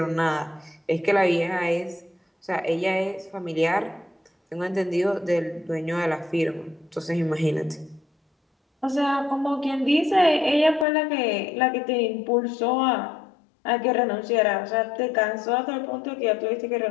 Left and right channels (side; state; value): right; drops out; at 10.9 s